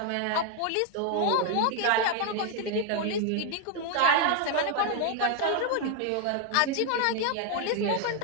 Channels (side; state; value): both; different; correlation 0.01